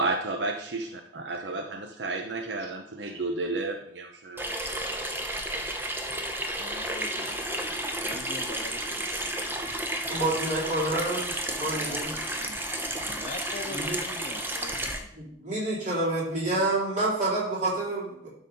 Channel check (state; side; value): normal; both; correlation 0.07